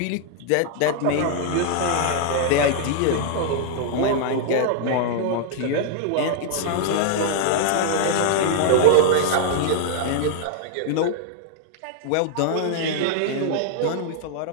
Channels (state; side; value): different; both; correlation -0.01